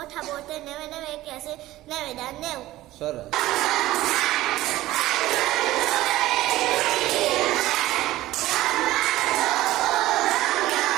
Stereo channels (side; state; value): left; quieter; 16.2 dB